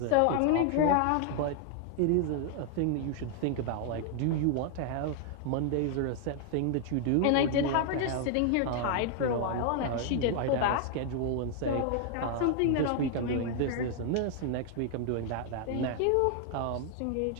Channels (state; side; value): different; both; correlation 0.00